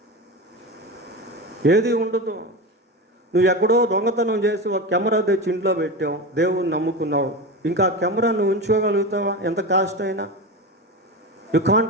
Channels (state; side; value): normal; both; correlation 0.22